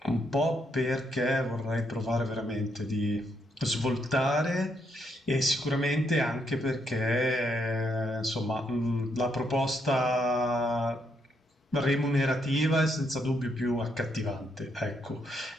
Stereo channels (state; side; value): normal; both; correlation 0.76